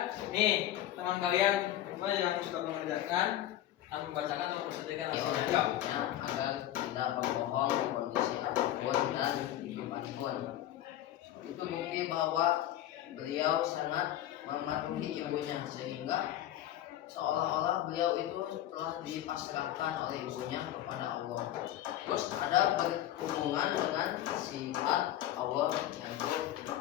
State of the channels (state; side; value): quieter; right; 13.0 dB